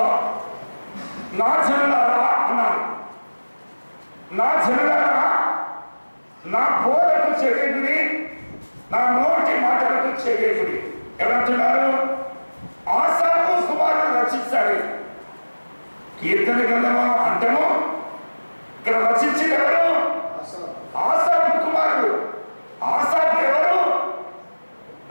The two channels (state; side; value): inverted; both; correlation -1.00